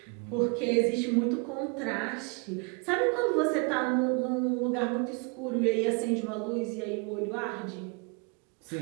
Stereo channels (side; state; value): left; quieter; 33.4 dB